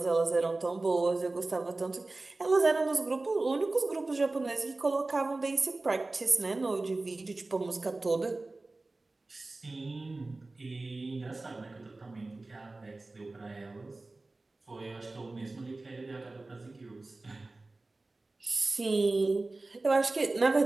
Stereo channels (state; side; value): quieter; left; 3.2 dB